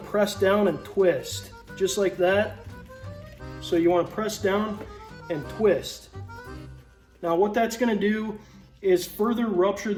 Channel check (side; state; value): both; identical; correlation 1.00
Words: down and twist, just like that. So you wanna press down and twist. Now what that's gonna do is further rupture